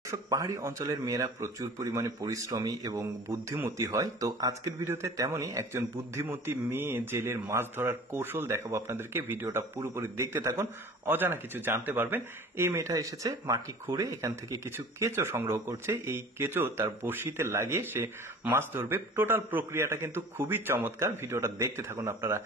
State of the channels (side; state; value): both; normal; correlation 0.43